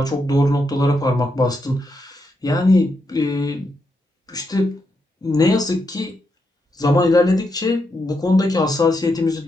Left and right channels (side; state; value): both; normal; correlation 0.82